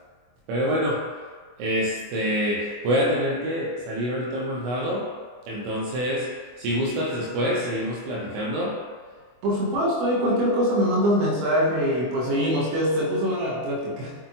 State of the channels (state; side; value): late; left; 24 ms